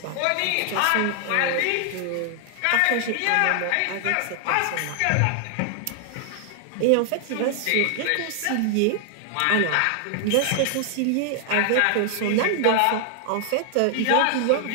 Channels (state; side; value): different; both; correlation 0.00